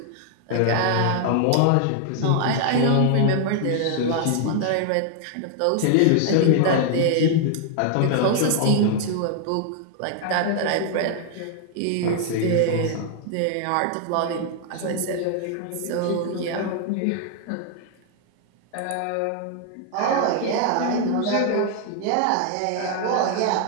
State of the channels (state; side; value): different; both; correlation 0.00